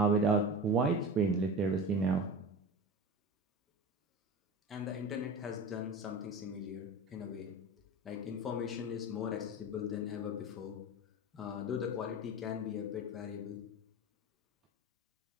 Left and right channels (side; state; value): both; normal; correlation 0.31